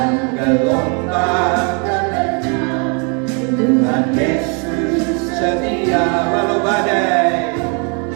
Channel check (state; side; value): quieter; left; 36.5 dB